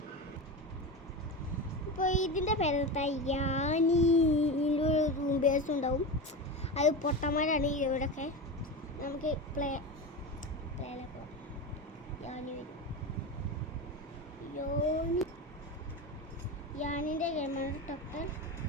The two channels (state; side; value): normal; both; correlation 0.23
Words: ഇപ്പോൾ ഇതിൻ്റെ പേരെന്താ, യാനി. ഇതിൻ്റെ ഒരു റൂം ബേസ് ഉണ്ടാവും. അത് പൊട്ടന്മാരാണ് ഇവിടെയൊക്കെ. നമുക്ക് പ്ലേയിലേക്ക് പോകാം. യാനി വരും. യാനിൻ്റെ ഗെയിമാണ് ഡോക്ടർ.